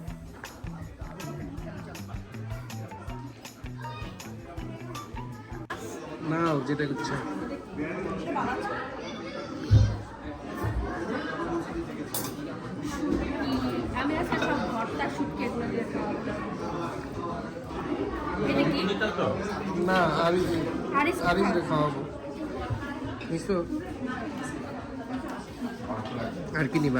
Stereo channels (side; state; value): both; identical; correlation 1.00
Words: না যেটা ইচ্ছা। আমি আজকে সব ভর্তা শুটকি এগুলো দিয়ে খাওয়াবো। এটা কি? না হারিস খাওয়াবো। নিশো আর কি